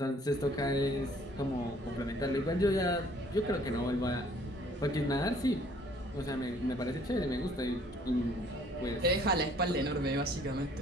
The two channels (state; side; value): normal; both; correlation 0.58